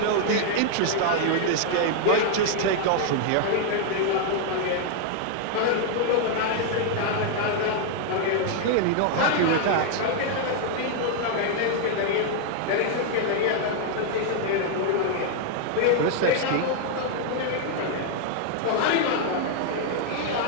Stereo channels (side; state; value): both; different; correlation 0.00